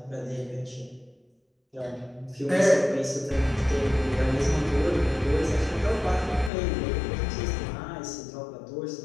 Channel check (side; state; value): right; drops out; at 6.5 s